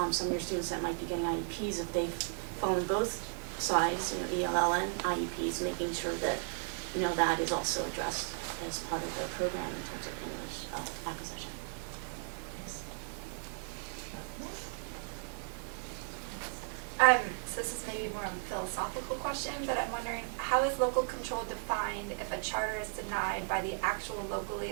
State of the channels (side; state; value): left; silent; 54 dB below the other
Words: some of your students that might be getting IEPs, if they've fallen both sides, ELL and IEPs, making sure that, that is also addressed as part of the program in terms of English acquisition. So this is maybe more of a philosophical question, but I'm wondering, how is local control defined if a charter is denied by the actual locally